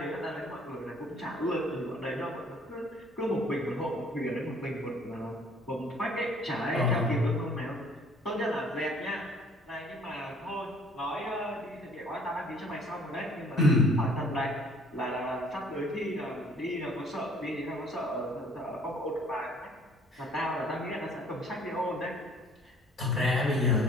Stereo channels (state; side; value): normal; both; correlation 0.56